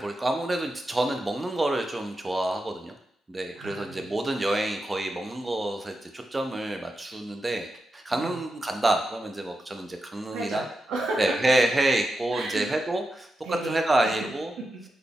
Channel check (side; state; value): both; normal; correlation 0.89